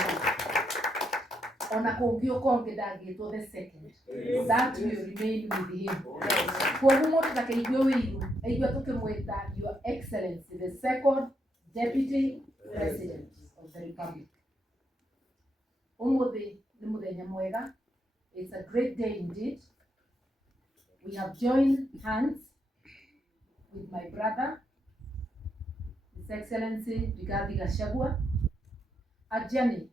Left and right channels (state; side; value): normal; both; correlation 0.79